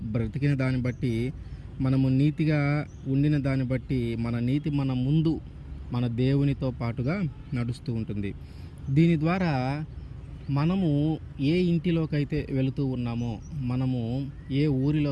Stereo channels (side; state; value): both; identical; correlation 1.00